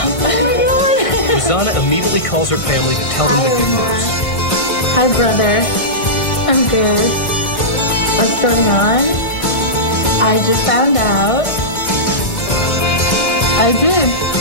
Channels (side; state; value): right; late; 1.6 ms